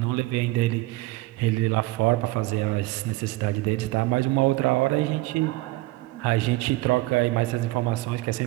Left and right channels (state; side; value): quieter; left; 19.9 dB